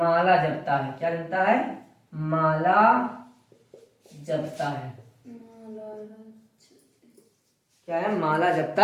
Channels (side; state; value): both; identical; correlation 1.00